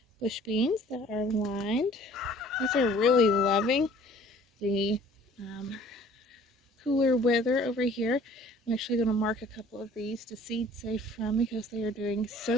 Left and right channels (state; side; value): normal; both; correlation 0.52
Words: bush beans that are lined. These are really loving the cooler weather over here. I'm actually going to mark a couple of these to seed safe from because they are doing